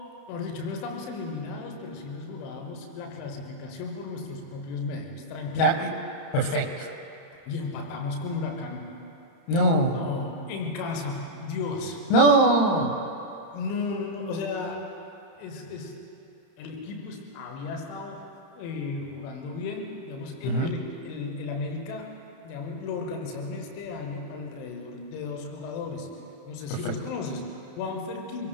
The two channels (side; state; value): right; late; 30 ms